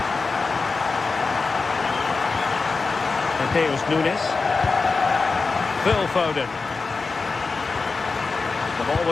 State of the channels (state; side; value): quieter; right; 4.2 dB